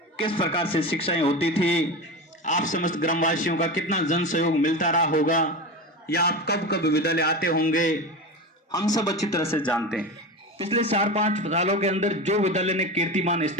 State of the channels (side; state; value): both; normal; correlation 0.25